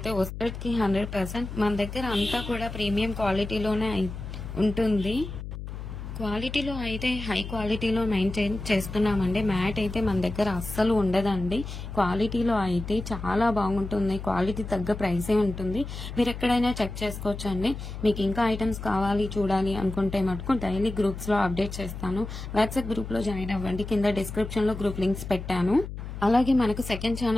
వస్తుంది 100%. మన దగ్గర అంతా కూడా ప్రీమియం క్వాలిటీలోనే ఉంటుంది. క్వాలిటీలో అయితే హై క్వాలిటీలో మెయింటైన్ చేస్తున్నామండి. మ్యాట్ అయితే మన దగ్గర అస్సలు ఉండదండి. క్వాలిటీలో అయితే చాలా బాగుంటుంది. క్వాలిటీ తగ్గ ప్రైసే ఉంటుంది. మీరు ఎక్కడైనా చెక్ చేసుకోవచ్చు అండి. మీకు ఇంకా ఐటమ్స్ కావాలి చూడాలి అనుకుంటే మటుకు డైలీ గ్రూప్స్లో అప్డేట్ చేస్తాను. వాట్సాప్ గ్రూప్లో జాయిన్ అవ్వండి. కింద డిస్క్రిప్షన్లో గ్రూప్ లింక్స్ పెట్టాను. అలాగే మనకు సెకండ్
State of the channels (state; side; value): noise; left; hum, 9 dB below the sound